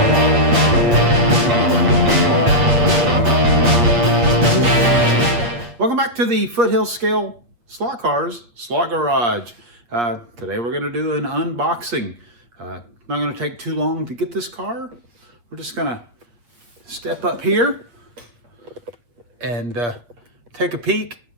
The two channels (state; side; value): late; left; 8.5 ms